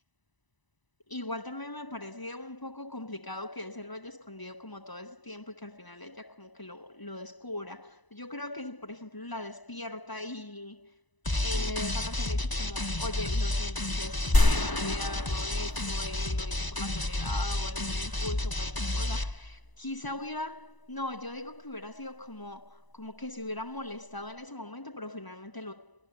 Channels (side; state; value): right; late; 1.0 ms